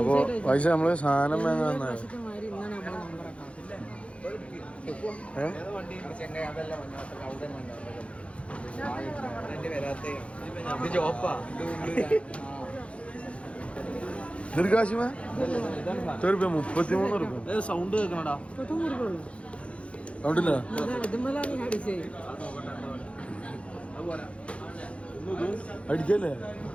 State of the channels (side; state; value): right; late; 0.061 ms